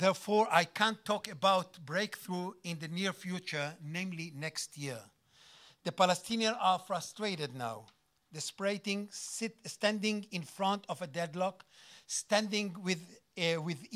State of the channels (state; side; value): identical; both; correlation 1.00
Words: I can't talk about breakthrough in the near future, namely next year. The Palestinians are frustrated now, desperating, standing in front of a deadlock, standing